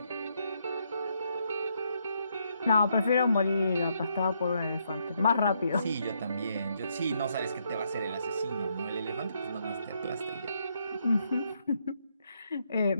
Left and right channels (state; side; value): inverted; both; correlation -0.75